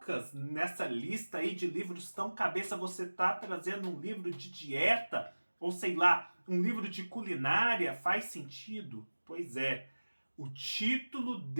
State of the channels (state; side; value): inverted; both; correlation -1.00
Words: nessa lista aí de livros tão cabeça, você tá trazendo um livro de dieta? Ou sei lá, um livro de culinária? Faz sentido? Pois é, o título